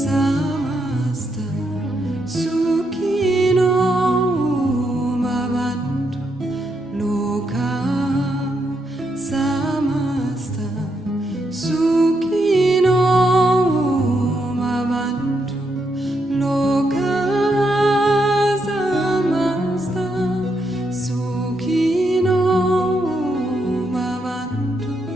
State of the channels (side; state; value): both; normal; correlation 0.80